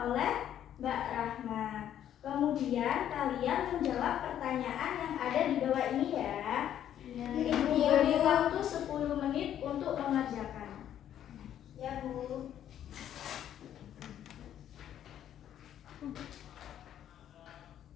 Mbak Rahma. Kemudian kalian menjawab pertanyaan yang ada di bawah ini ya. Ibu beri waktu 10 menit untuk mengerjakan. Ya, Bu.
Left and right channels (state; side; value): quieter; right; 10.6 dB